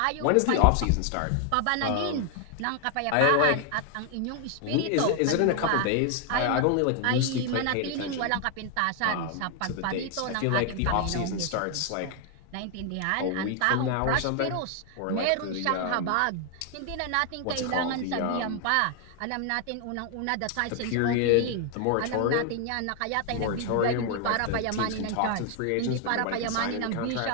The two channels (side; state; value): both; different; correlation 0.00